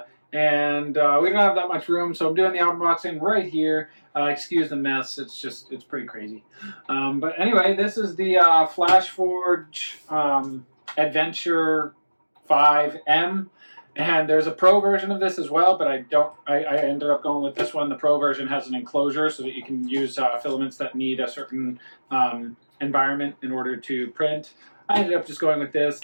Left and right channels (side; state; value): both; inverted; correlation -1.00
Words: and we don't have that much room, so I'm doing the unboxing right here. Excuse the mess, it's pretty crazy. But anyway, this is the Flashforge Adventure 5M. And there's a Pro version of this as well, but I ended up going with this one. The Pro version has an enclosure so that you can use filaments that need a certain environment in order to print. I ended up just going with